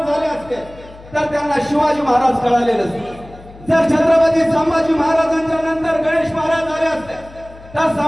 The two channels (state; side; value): noise; left; hum, 20 dB below the sound